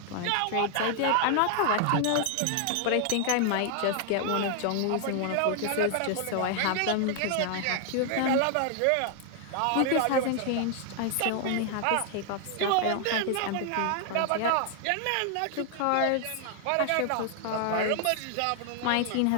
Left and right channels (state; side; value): different; both; correlation 0.00